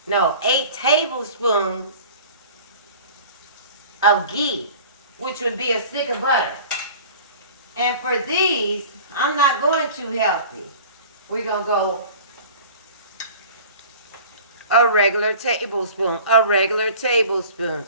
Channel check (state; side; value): inverted; both; correlation -0.42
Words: tablespoons of ghee, which would be a stick of butter. And for these, I'm not going too healthy. We're going to go a regular tablespoon.